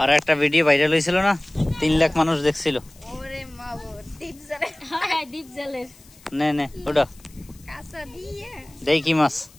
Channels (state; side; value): noise; left; hiss, 26 dB below the sound